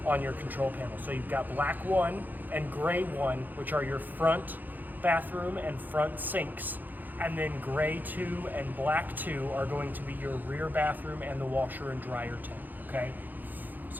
on your control panel. So you've got black 1 and gray 1, which are your front bathroom and front sinks. And then gray 2 and black 2 are going to be your rear bathroom and the washer and dryer tank, okay?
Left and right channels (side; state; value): left; late; 0.085 ms